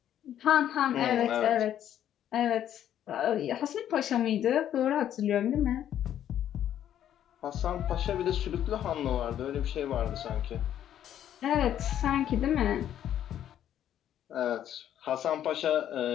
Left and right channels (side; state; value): right; quieter; 10.7 dB